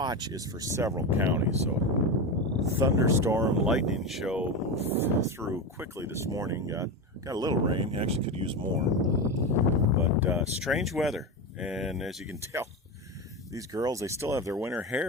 is for several counties, so thunderstorm, lightning show moved through quickly this morning. Got a little rain. Actually could use more, but strange weather. And as you can tell, these girls, they still have their winter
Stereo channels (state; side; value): normal; both; correlation 0.19